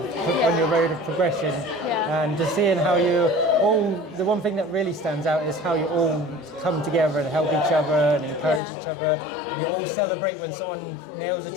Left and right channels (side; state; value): right; drops out; at 8.6 s